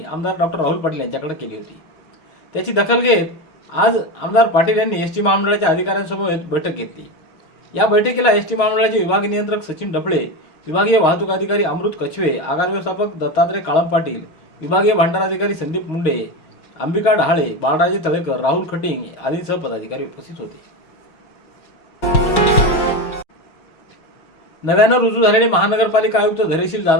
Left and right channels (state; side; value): late; right; 6.3 ms